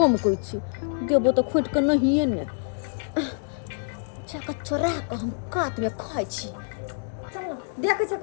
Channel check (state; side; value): silent; right; digital silence